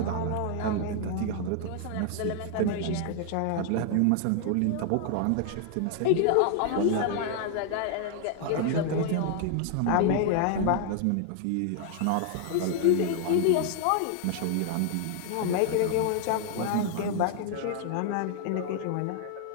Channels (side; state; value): both; different; correlation 0.00